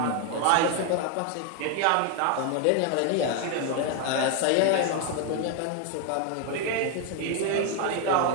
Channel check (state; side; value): different; both; correlation 0.01